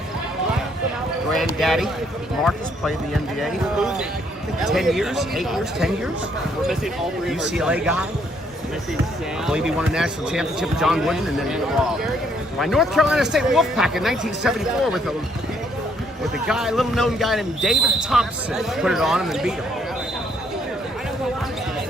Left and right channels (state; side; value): normal; both; correlation 0.69